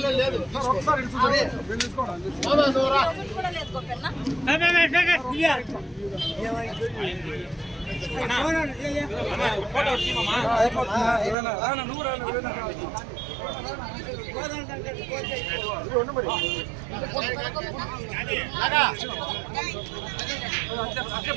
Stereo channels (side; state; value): left; drops out; at 11.4 s